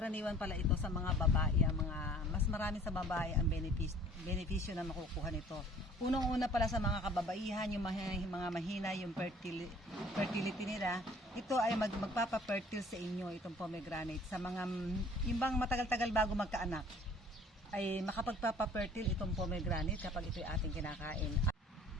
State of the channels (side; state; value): both; normal; correlation 0.53